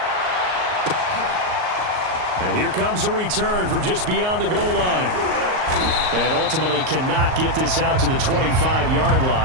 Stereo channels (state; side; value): late; left; 38 ms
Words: And here comes a return from just beyond the goal line. And ultimately cannot get this out to the 25-yard